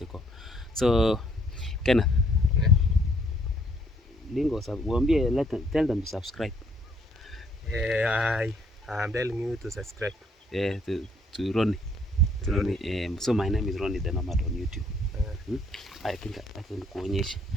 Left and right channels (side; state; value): both; normal; correlation 0.65